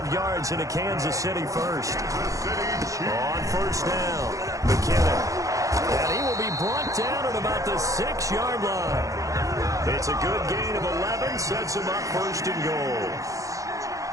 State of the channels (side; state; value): left; late; 0.16 ms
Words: yards into Kansas City first. On first down, McKinnon. And he will be brought down at about the 6-yard line. It's a good gain of 11, sets him up first and goal.